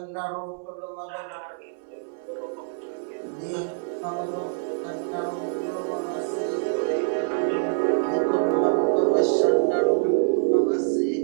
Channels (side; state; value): left; silent; 61 dB below the other